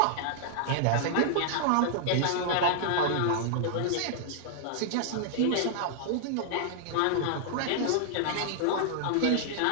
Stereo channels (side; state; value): both; different; correlation -0.01